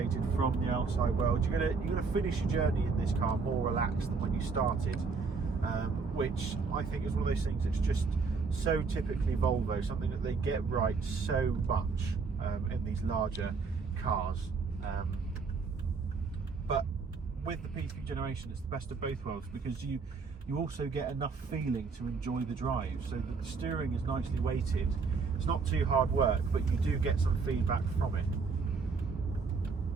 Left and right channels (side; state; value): left; quieter; 4.8 dB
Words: from the outside world. You're gonna finish your journey in this car more relaxed than when you started, which I think is one of those things that's just so typically Volvo, something that they get right so much in these larger cars. But with the P3 generation, it's the best of both worlds, because you also get enough feeling to enjoy the drive, so that the steering is nicely weighted. It's not too hard work, but you do get some feedback from it.